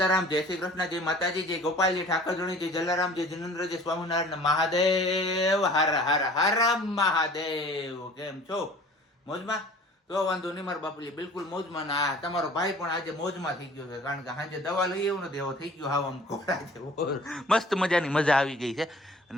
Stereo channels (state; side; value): normal; both; correlation 0.48